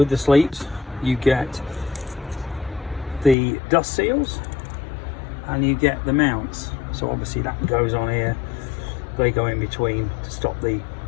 the sleeves, you get the dust seals and you get the mounts. So obviously that goes on here. They go in between to stop the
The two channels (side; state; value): right; drops out; at 3.4 s